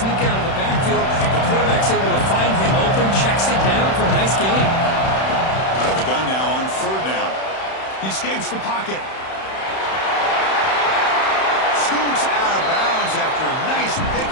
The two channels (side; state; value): right; late; 31 ms